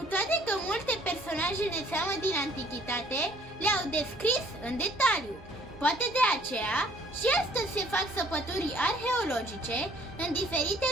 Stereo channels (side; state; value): both; normal; correlation 0.58